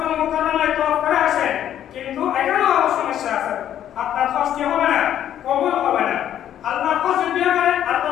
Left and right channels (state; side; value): quieter; right; 10.8 dB